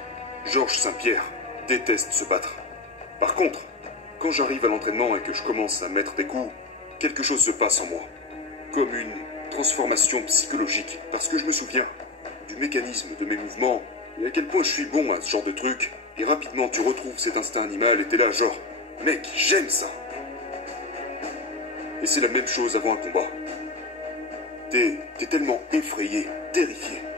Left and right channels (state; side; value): quieter; right; 3.3 dB